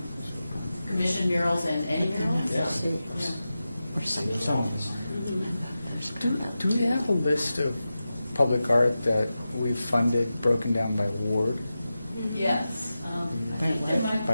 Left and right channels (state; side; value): inverted; both; correlation -0.93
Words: commission murals and any murals. Do we have a list of public art that we've funded broken down by ward? Yes. I think there might-